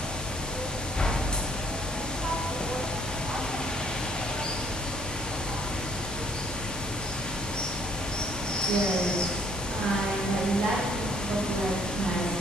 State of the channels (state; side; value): normal; both; correlation 0.63